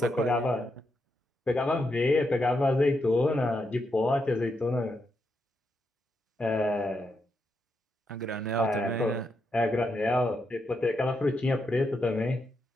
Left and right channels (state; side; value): normal; both; correlation 0.82